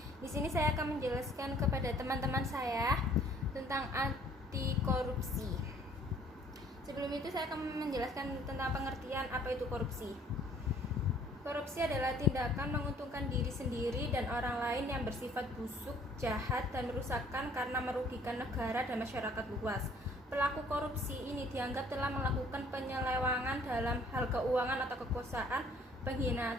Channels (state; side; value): normal; both; correlation 0.58